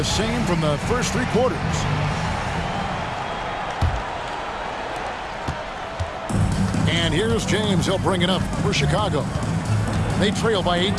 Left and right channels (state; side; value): identical; both; correlation 1.00